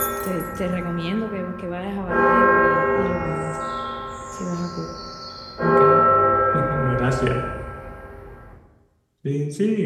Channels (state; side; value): identical; both; correlation 1.00